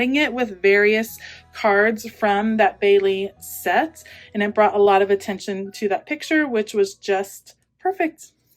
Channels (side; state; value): both; identical; correlation 1.00